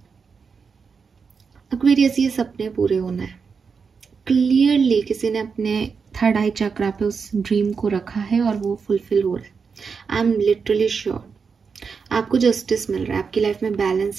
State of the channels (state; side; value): quieter; left; 5.6 dB